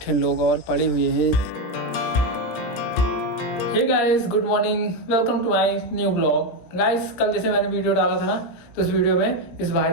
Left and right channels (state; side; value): late; right; 17 ms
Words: लोग और पढ़े हुए हैं। Hey guys, good morning, welcome to my new blog. Guys, कल जैसे मैंने वीडियो डाला था ना, तो उस वीडियो में इस भाई